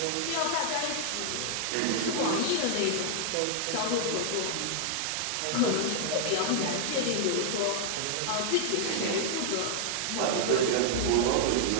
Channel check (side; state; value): both; different; correlation -0.01